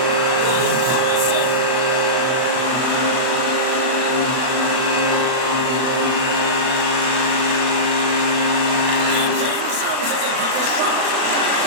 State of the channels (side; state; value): left; late; 38 ms